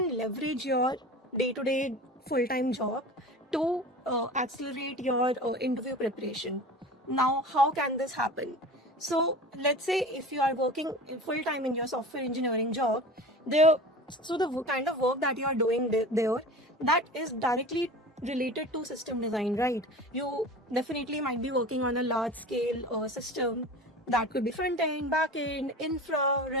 leverage your day-to-day full-time job to accelerate your interview preparation. Now, how can this happen? So, let's say if you are working full-time in your software engineering job, there, so the kind of work that you are doing there, that is directly related to system design, right? You definitely might be working on a large-scale system that could be front end, back end, infra,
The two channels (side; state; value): both; normal; correlation 0.36